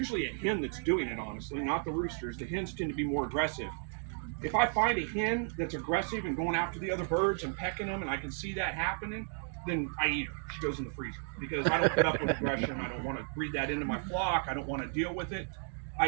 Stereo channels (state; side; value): silent; left; 55 dB below the other